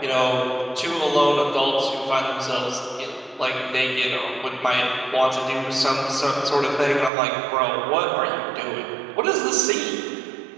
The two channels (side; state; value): left; drops out; at 7.1 s